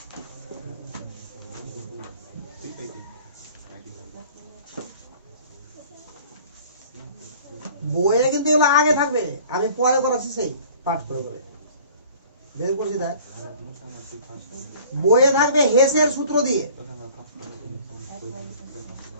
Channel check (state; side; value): inverted; both; correlation -0.49